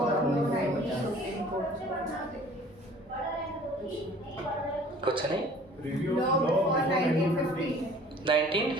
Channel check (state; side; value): normal; both; correlation 0.50